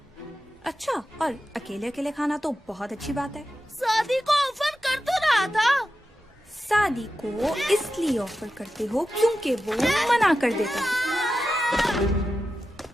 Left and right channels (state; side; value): normal; both; correlation 0.91